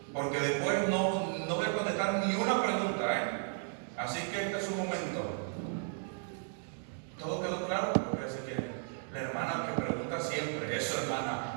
Porque después no voy a contestar ni una pregunta, ¿eh? Así que este es un momento. ¿Todo quedó claro? Porque así que la hermana que pregunta siempre, eso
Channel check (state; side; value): silent; left; 55 dB below the other